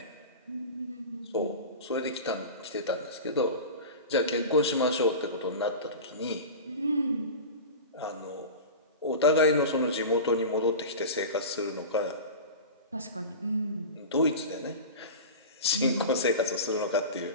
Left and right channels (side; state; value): both; inverted; correlation -0.30